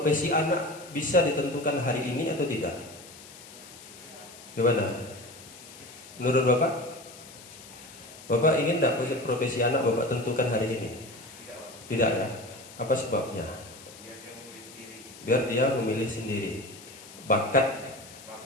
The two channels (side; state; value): left; noise; hiss, 18 dB below the sound